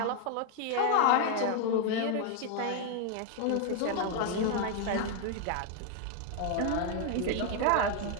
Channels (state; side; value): different; both; correlation 0.00